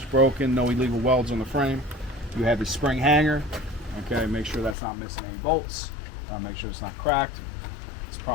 broken, no illegal welds on the frame. You have the spring hanger. Okay, make sure that's not missing any bolts. Make sure it's not cracked. It's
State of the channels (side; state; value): right; drops out; at 4.8 s